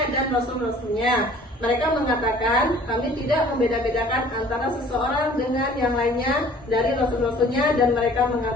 dan rasul-rasulnya. Mereka mengatakan kami tidak membeda-bedakan antara seseorang dengan yang lainnya dari rasul-rasulnya, dan mereka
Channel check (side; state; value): both; normal; correlation 0.51